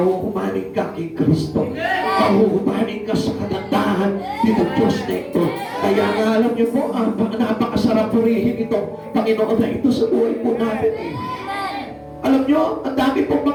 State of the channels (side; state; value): both; identical; correlation 1.00